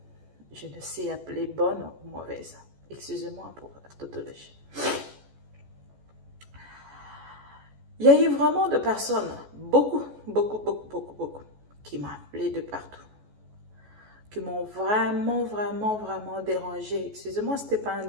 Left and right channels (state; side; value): late; left; 14 ms